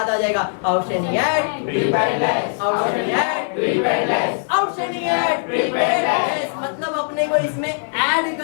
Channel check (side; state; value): right; silent; 55 dB below the other